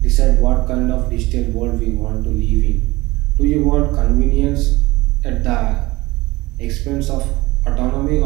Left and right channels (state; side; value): quieter; left; 20.5 dB